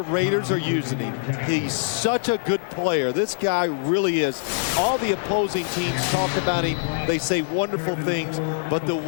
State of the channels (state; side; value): silent; right; 56 dB below the other